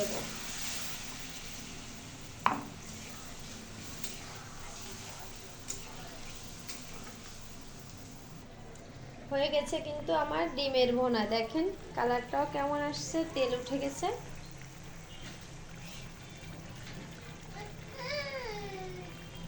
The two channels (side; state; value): both; identical; correlation 1.00